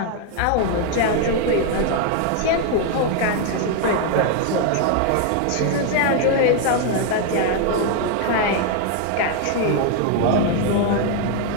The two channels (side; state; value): both; different; correlation 0.01